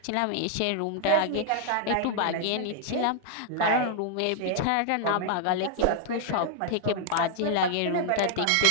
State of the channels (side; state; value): both; different; correlation 0.00